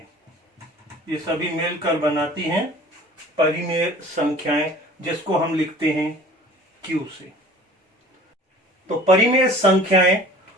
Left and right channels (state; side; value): normal; both; correlation 0.46